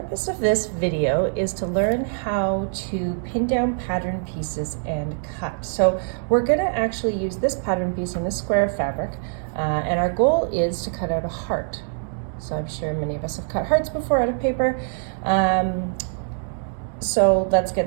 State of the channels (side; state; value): left; silent; digital silence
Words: of this video is to learn how to pin down pattern pieces and cut. So we're going to actually use this pattern piece in this square of fabric, and our goal is to cut out a heart. So I'm sure many of us have cut hearts before out of paper. So let's